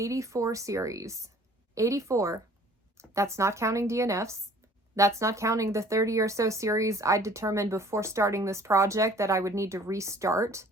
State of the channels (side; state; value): both; normal; correlation 0.52